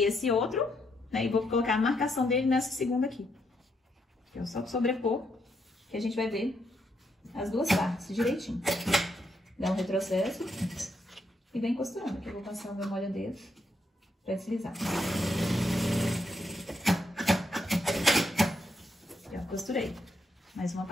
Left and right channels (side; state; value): both; normal; correlation 0.78